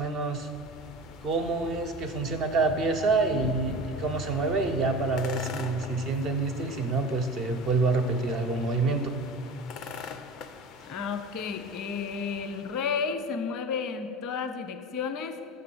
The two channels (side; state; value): both; normal; correlation 0.34